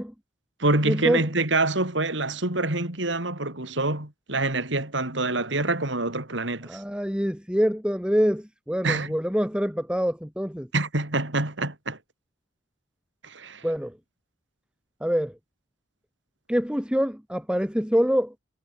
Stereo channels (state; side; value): normal; both; correlation 0.57